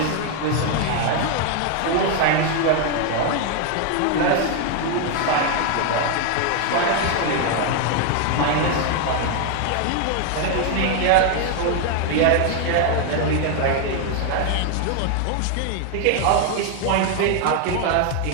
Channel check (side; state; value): both; different; correlation 0.00